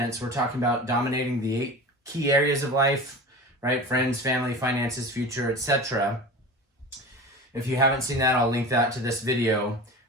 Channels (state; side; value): normal; both; correlation 0.32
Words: we're talking about dominating the 8 key areas of life, right? Friends, family, finances, future, etc. If you haven't seen that, I'll link that to this video.